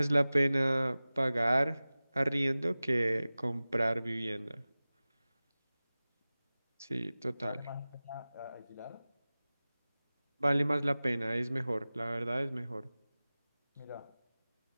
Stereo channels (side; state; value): both; inverted; correlation -0.98